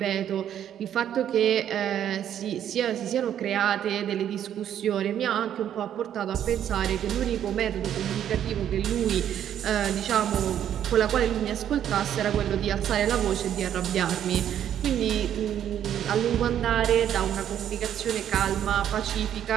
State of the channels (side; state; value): left; quieter; 10.1 dB